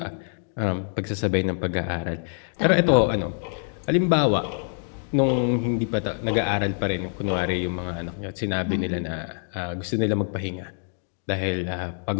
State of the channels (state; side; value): silent; right; 61 dB below the other